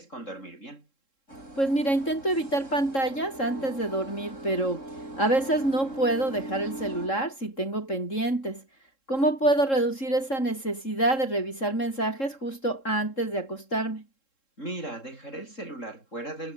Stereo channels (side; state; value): right; late; 3.7 ms